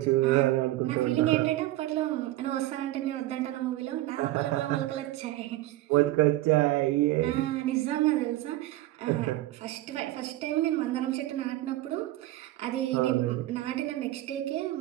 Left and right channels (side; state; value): left; quieter; 16.2 dB